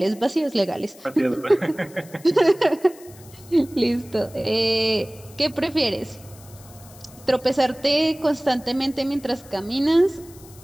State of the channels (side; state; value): left; noise; hiss, 22 dB below the sound